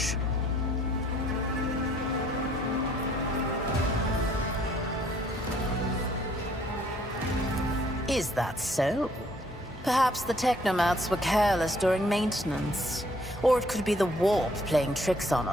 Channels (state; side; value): normal; both; correlation 0.63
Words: Is that so? Perhaps the technomats were careless during maintenance. Or it could be the warp playing tricks on